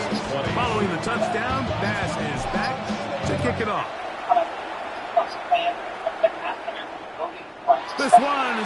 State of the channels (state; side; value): identical; both; correlation 1.00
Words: Following following the touchdown, pass is back to kick it off. This one